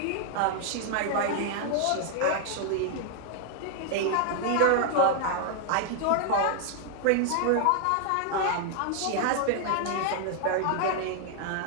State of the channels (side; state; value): both; different; correlation 0.00